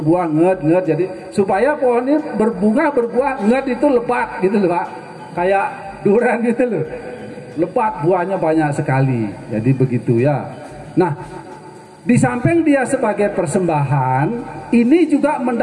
nged. Jadi supaya pohon ini berbuah nged itu lebat gitu loh Pak. Kayak durian gitu loh. Lebat buahnya banyak sekali. Jadi begitu ya. Nah, di samping dia sebagai persembahan, ini juga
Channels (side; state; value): both; identical; correlation 1.00